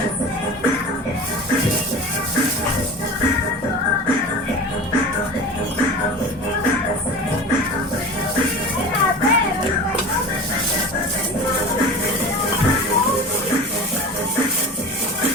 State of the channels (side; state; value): both; normal; correlation 0.34